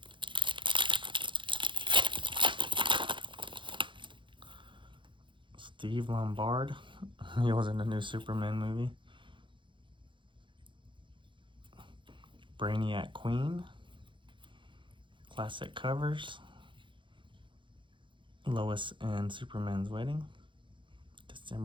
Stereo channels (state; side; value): late; left; 0.24 ms